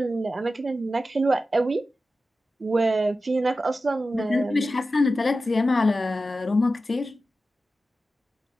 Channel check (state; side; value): normal; both; correlation 0.93